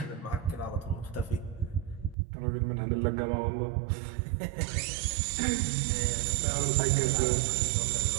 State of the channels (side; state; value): left; drops out; at 2.1 s